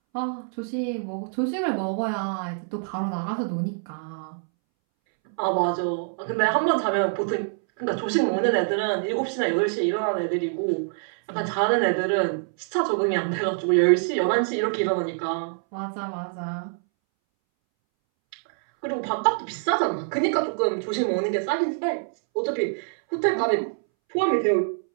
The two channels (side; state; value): left; silent; 62 dB below the other